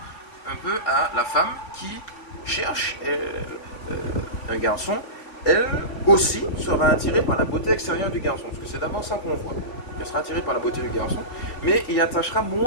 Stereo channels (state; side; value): late; right; 3.5 ms